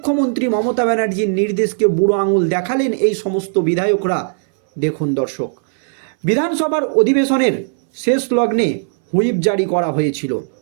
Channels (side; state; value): left; silent; 61 dB below the other